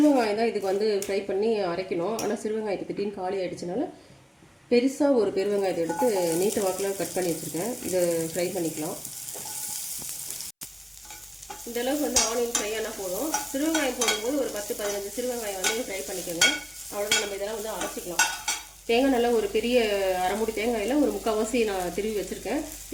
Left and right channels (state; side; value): identical; both; correlation 1.00